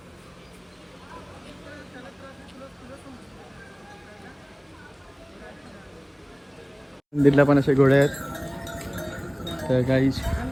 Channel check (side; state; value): both; identical; correlation 1.00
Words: मंदिरला पण असे घोडे आहेत. तर काही